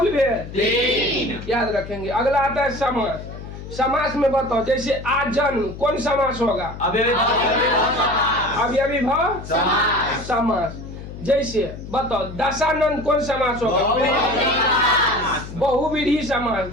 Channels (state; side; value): noise; left; hum, 12 dB below the sound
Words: भेद 3 याद रखेंगे। अगला आता है समास। समास में बताओ जैसे आजन्म कौन समास होगा, अव्ययीभाव समास। जैसे बताओ दशानंद कौन समास होगा, बहुव्रीहि समास।